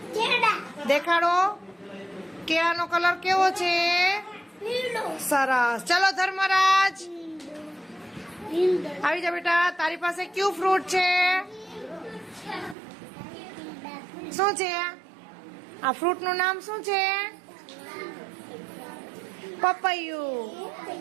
દેખાડો. કેળાનો કલર કેવો છે? સરસ. ચલો ધર્મરાજ આવી જા બેટા. તારી પાસે કયું ફ્રૂટ છે? શું છે આ ફ્રૂટ નું નામ? શું છે? પપૈયું.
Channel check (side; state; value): left; drops out; at 12.8 s